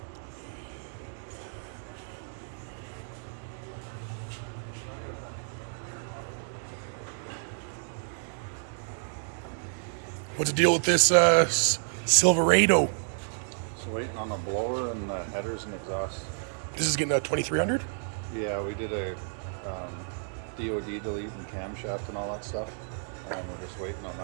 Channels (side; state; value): left; silent; 58 dB below the other